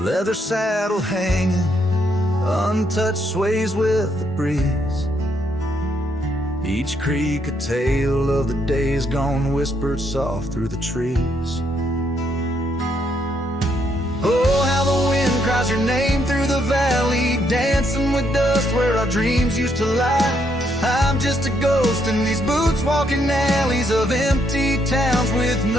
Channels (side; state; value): both; normal; correlation 0.74